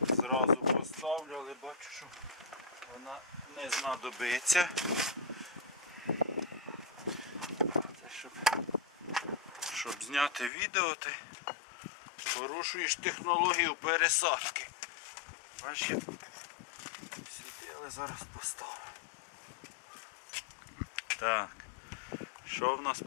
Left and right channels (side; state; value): right; drops out; at 10.5 s